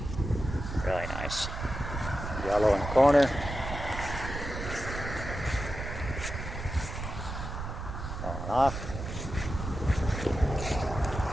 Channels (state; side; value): noise; right; rumble, 6 dB below the sound